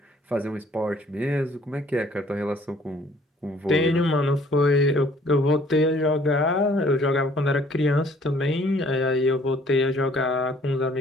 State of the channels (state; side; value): normal; both; correlation 0.59